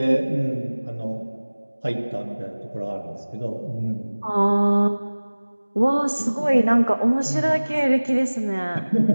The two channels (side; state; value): both; inverted; correlation -1.00